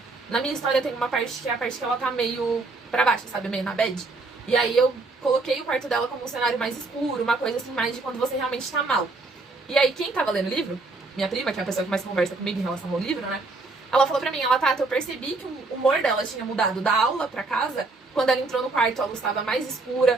Na minha história tem uma parte que é a parte que ela tá meio pra baixo, sabe? Meio na bad. E aí eu coloquei o quarto dela como um cenário mais escuro, uma coisa assim, mais de quando você realmente tá mal. E aí quem tava lendo o livro, minha prima, que é a pessoa que mais conversa comigo em relação ao livro, né? Ela falou pra mim, Tata, eu percebi que o humor dela tinha mudado da aula pra casa. Quando ela entrou no quarto, a luz tava mais escura,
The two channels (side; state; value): left; quieter; 3.5 dB